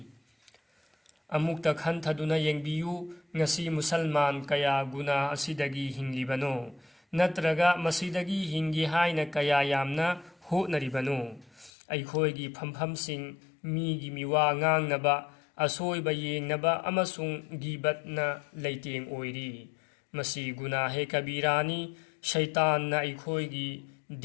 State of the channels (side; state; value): right; drops out; at 11.7 s